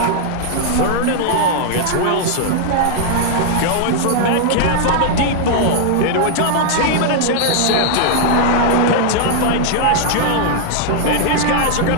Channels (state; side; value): different; both; correlation -0.01